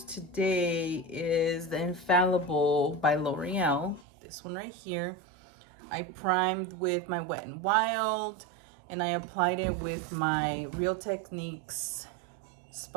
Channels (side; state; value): left; drops out; at 4.0 s